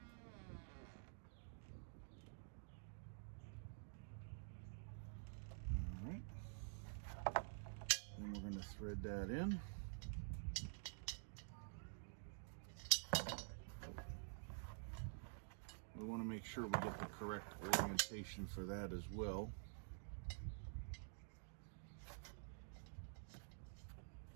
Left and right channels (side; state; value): left; silent; digital silence